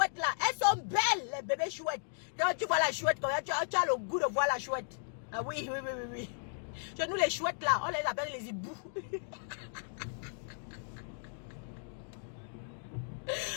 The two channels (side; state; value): right; silent; digital silence